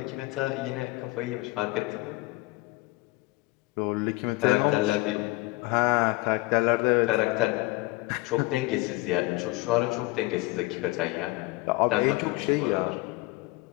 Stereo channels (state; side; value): quieter; right; 21.8 dB